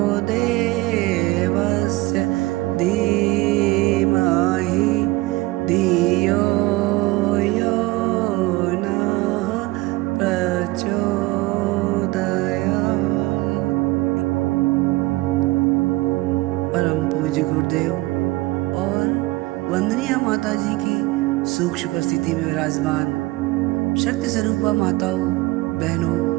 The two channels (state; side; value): quieter; left; 20.6 dB